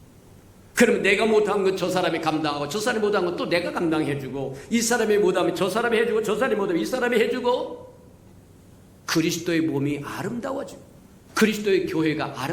그러면 내가 못한 건 저 사람이 감당하고 저 사람이 못한 건 또 내가 감당해주고 이 사람이 못하면 저 사람이 해주고 저 사람이 못하면 이 사람이 해주고 그리스도의 몸이 아름다워지고 그리스도의 교회가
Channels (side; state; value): both; identical; correlation 1.00